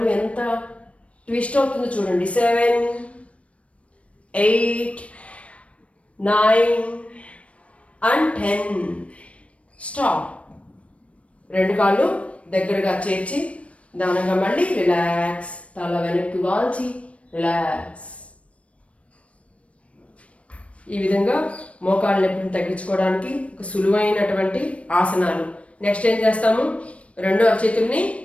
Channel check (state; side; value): late; right; 0.063 ms